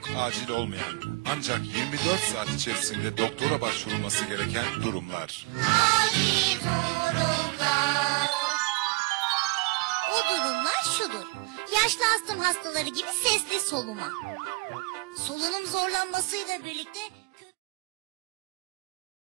acil olmayan ancak 24 saat içerisinde doktora başvurulması gereken durumlar. Acil durumlar. O durumlar şudur. Yaşlı astım hastaları gibi sesli soluma. Solunum zorlanmasıyla birlikte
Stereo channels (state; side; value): quieter; left; 24.4 dB